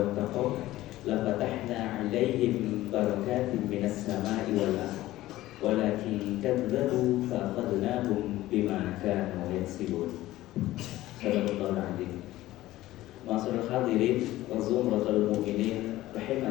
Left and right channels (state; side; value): quieter; right; 16.1 dB